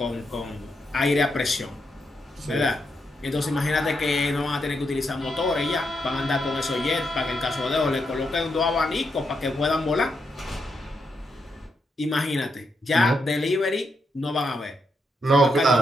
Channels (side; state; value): both; normal; correlation 0.82